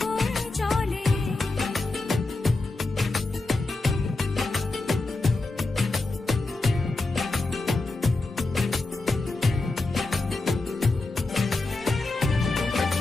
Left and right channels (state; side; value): quieter; right; 3.2 dB